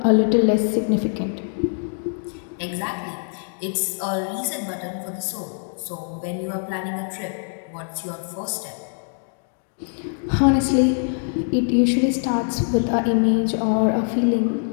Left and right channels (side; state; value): right; silent; 63 dB below the other